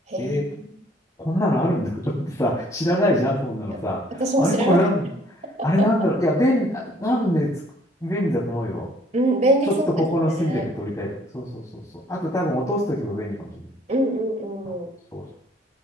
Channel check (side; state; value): both; normal; correlation 0.60